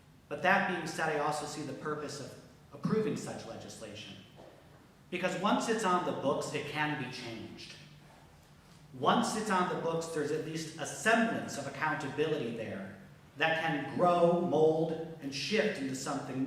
But that being said, I also see the purpose of approving such legislation. Because once it's on the books, it can be changed. Once it's on the books, there's at least a semblance of accountability there that can grow, mold, and shift into something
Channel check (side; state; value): both; identical; correlation 1.00